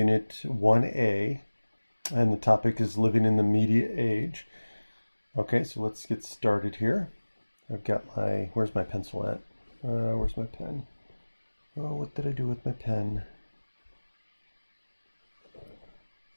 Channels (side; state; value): both; inverted; correlation -1.00